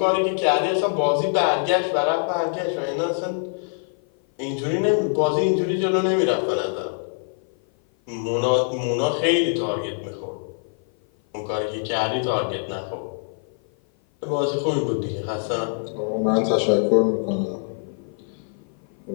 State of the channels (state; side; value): silent; right; 56 dB below the other